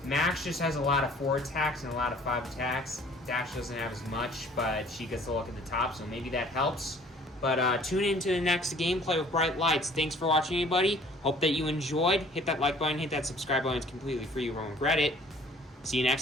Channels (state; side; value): normal; both; correlation 0.54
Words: Max just has a lot of 4 attacks and a lot of 5 attacks. Dash doesn't have as much, but she gets to look at the top, so maybe that helps. But tune in to the next gameplay with Bright Lights. Thanks for watching, everybody. Hope that you enjoyed. Hit that like button, hit that subscribe button. It's completely free. You won't regret it. See you